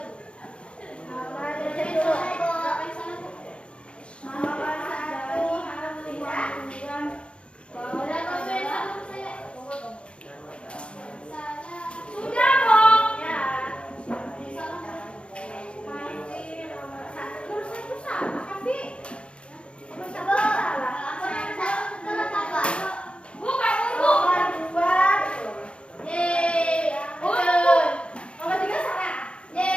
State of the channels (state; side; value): late; right; 0.057 ms